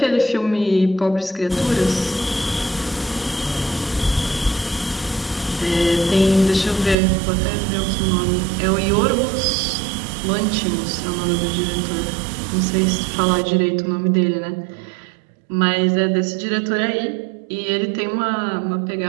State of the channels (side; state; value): left; drops out; at 7.0 s